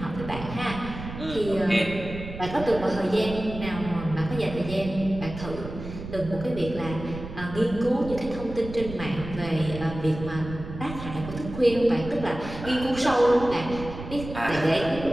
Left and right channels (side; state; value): right; noise; rumble, 10 dB below the sound